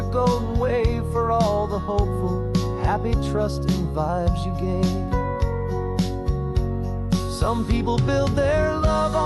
golden wave, for all the hopeful, happy, trusting vibes you gave. Some people build their love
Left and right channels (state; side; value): identical; both; correlation 1.00